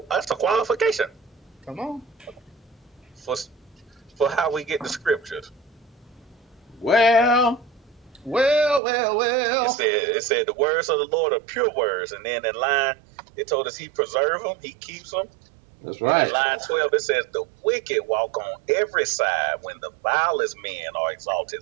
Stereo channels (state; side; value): drops out; left; at 8.8 s